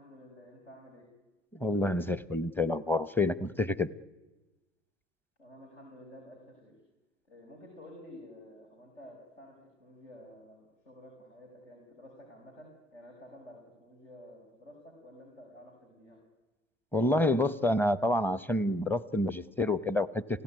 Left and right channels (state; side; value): normal; both; correlation 0.65